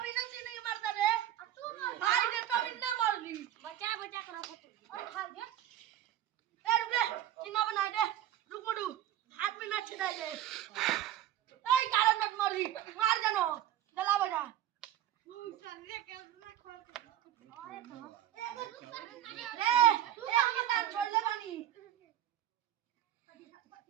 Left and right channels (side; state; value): left; quieter; 11.9 dB